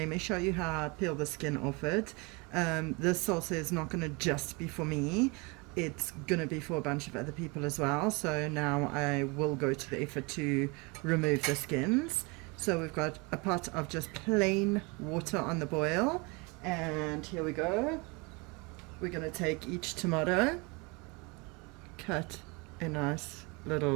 me show you how I peel the skin off it. This salsa is not going to just be for me. It's going to be for a bunch of other people as well. So now I will go to the effort to remove the skins. So we've got a pot of just plain water on the boil, and here we go. We're going to take each tomato, cut a nice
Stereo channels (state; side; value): quieter; left; 28.4 dB